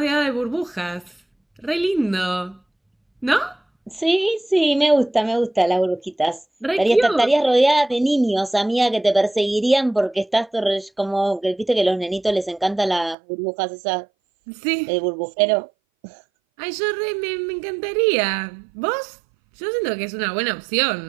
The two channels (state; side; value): drops out; left; at 13.2 s